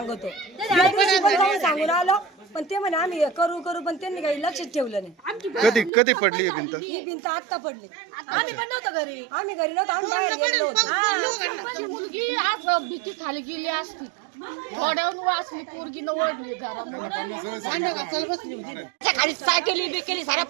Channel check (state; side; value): drops out; left; at 5.9 s